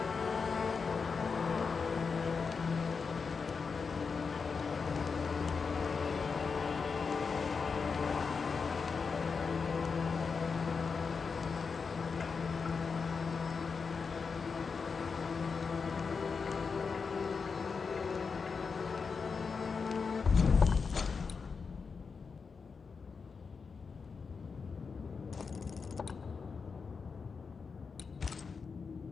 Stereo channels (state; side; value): quieter; right; 5.2 dB